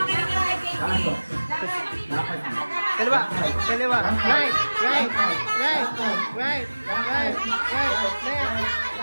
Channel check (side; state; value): both; inverted; correlation -1.00